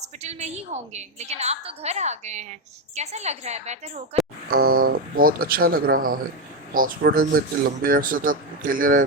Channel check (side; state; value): both; normal; correlation 0.08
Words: میں ہی ہوں گے، لیکن آپ تو گھر آ گئے ہیں۔ کیسا لگ رہا ہے بہتر ہو کر؟ بہت اچھا لگ رہا ہے۔ ہاسپٹل میں اتنے لمبے عرصے تک اکیلے